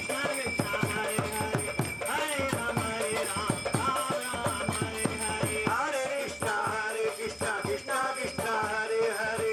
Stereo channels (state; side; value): identical; both; correlation 1.00